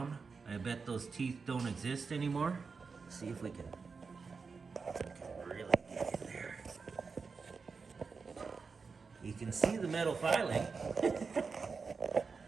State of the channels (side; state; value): left; quieter; 4.9 dB